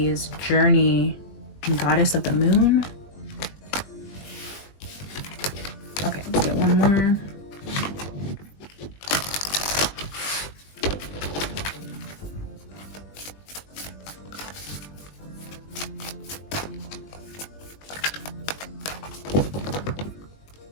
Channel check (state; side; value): late; right; 20 ms